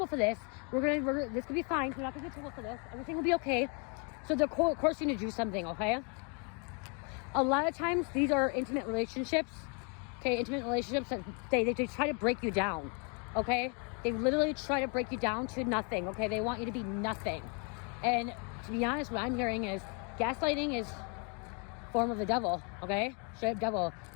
for this. This could be fine. You're not going to get in trouble for this. Everything will be okay. So they're coercing you to do something, okay? A lot of times, these are intimate relationships. Okay, intimate relationships that they try to break you down, okay? They literally try to break you down to nothing, okay? They want you to be nothing. And to be honest, what I'm hearing is gaslighting is a form of the devil, okay? Straight up devil.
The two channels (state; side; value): quieter; right; 36.2 dB